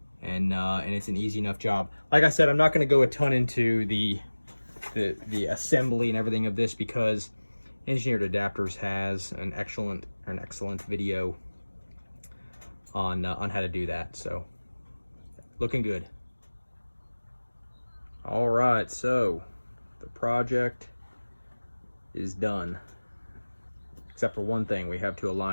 and it's an easy enough job. Like I said, I'm not gonna go a ton into the assembly and everything of this because Engineered Adapters has an excellent video on how to do that. So looking good. All right, so the project is done, except for one thing. We have to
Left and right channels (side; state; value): both; inverted; correlation -1.00